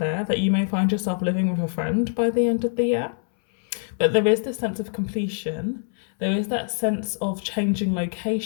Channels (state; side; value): silent; right; 63 dB below the other